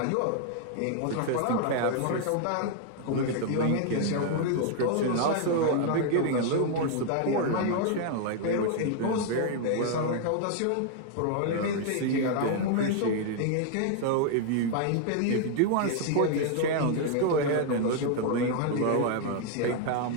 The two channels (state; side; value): different; both; correlation 0.00